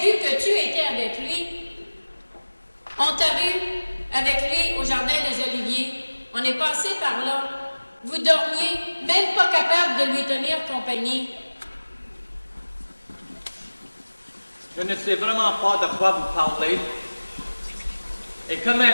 que tu étais avec lui. On t'a vu avec lui au Jardin des Oliviers. On est passé par là. Vous dormiez, même pas capable de lui tenir compagnie. Je ne sais vraiment pas de quoi vous parlez. Et que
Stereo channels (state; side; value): inverted; both; correlation -1.00